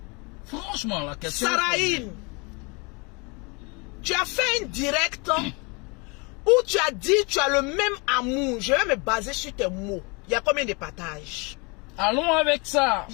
Franchement, la question... Saraïne, tu as fait un direct où tu as dit tu as le même amour. Je vais me baser sur tes mots. Il y a combien de partages? Allons avec ça. Il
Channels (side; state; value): right; quieter; 30.0 dB